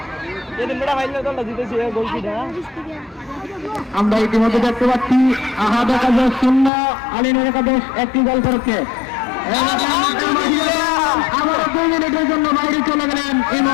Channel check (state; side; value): drops out; right; at 6.7 s